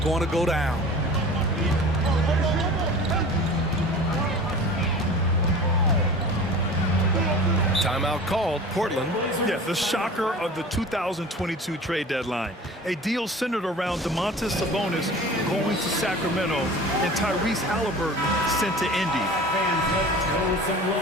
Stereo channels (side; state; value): both; normal; correlation 0.39